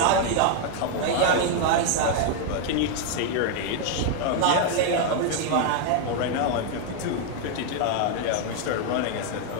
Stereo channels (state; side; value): different; both; correlation 0.00